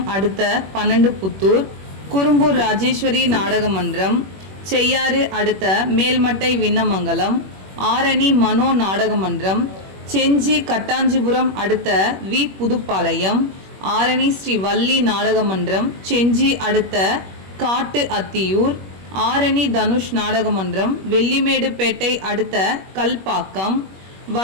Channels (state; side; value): late; left; 21 ms